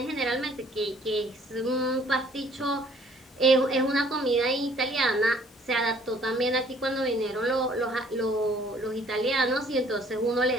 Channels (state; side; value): normal; both; correlation 0.59